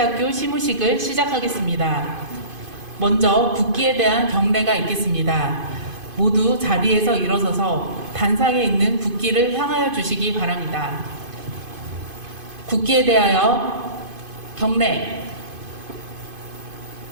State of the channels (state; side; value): late; left; 2.5 ms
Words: 시무식을 시작하겠습니다. 먼저 국기에 대한 경례가 있겠습니다. 모두 자리에서 일어서서 단상에 있는 국기를 향하여 주시기 바랍니다. 국기에 대하여 경례.